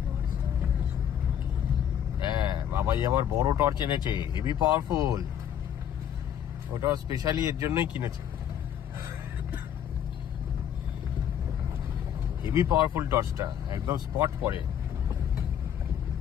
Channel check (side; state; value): right; quieter; 9.4 dB